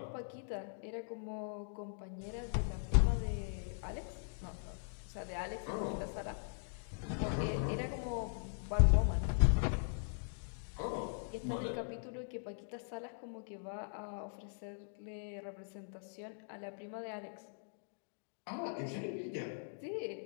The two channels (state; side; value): silent; right; digital silence